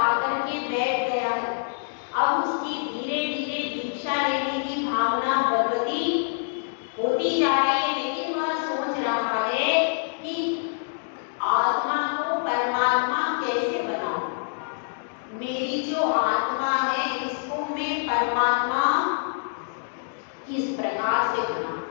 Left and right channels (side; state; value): right; silent; digital silence